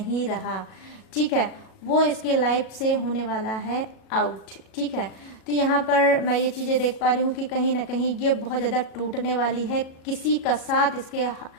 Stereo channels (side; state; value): right; late; 37 ms